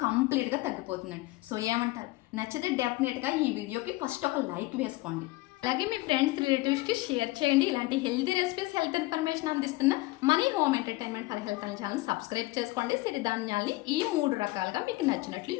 కంప్లీట్గా తగ్గిపోతుందండి. సో ఏమంటారు? నచ్చితే డెఫినెట్గా ఈ వీడియోకి ఫస్ట్ ఒక లైక్ వేసుకోండి. అలాగే మీ ఫ్రెండ్స్ రిలేటివ్స్కి షేర్ చేయండి. ఇలాంటి హెల్తీ రెసిపీస్, హెల్త్ ఇన్ఫర్మేషన్ అందిస్తున్న money home entertainment for health అనే ఛానల్ సబ్స్క్రైబ్ చేసుకోండి. సిరిధాన్యాల్ని ఈ 3 రకాలుగా మీకు నచ్చినట్లు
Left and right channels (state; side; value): quieter; right; 20.5 dB